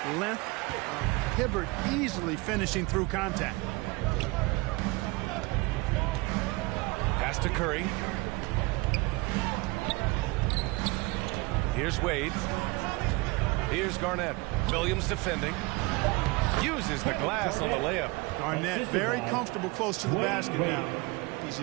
length, Hibbert easily finishing through contact. Pass to Curry. Here's Wade. Here's Garnett. Williams defending. Uses the glass on the layup. Garnett very comfortable close to the basket now. He's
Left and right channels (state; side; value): quieter; left; 24.2 dB